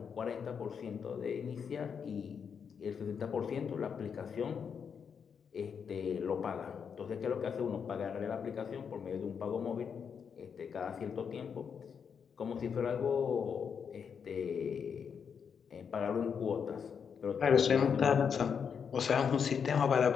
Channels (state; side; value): quieter; right; 6.8 dB